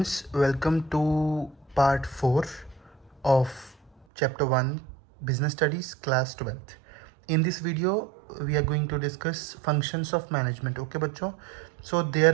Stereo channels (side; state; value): left; drops out; at 4.0 s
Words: welcome to part 4 of chapter 1 Business Studies class 12th. In this video we are going to discuss functions of management. Okay bachcho, so